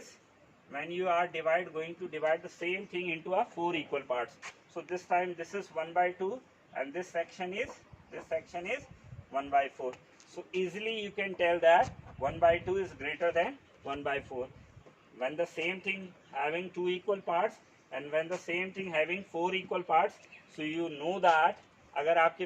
when you are going to divide the same thing into a 4 equal parts. So this time this is 1 by 2 and this section is 1 by 4. So easily you can tell that 1 by 2 is greater than 1 by 4. When the same thing having two equal parts and when the same thing having four equal parts, so you know that अगर आपके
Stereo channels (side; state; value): both; identical; correlation 1.00